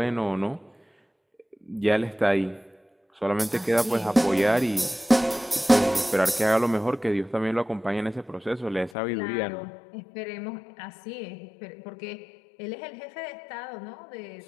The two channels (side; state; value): right; drops out; at 8.9 s